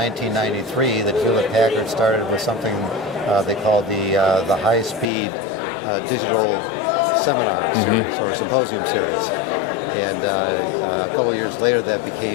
that Hewlett-Packard started with something they called the high-speed digital seminar series or symposium series. And a couple of years later that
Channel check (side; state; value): right; drops out; at 5.1 s